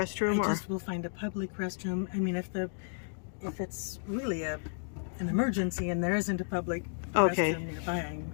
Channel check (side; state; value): right; silent; digital silence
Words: I just will find a public restroom. I mean, if it's really an emergency and there isn't a public restroom nearby, I'm